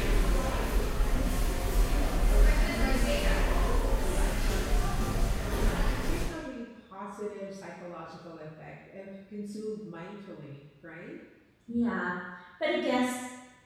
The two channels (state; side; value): identical; both; correlation 1.00